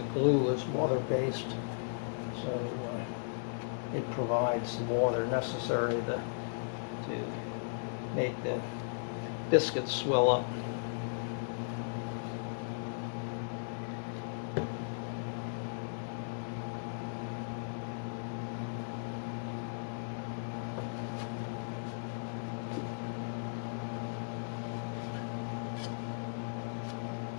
glue is water-based, so it provides the water necessary to make the biscuits swell up.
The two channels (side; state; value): right; silent; digital silence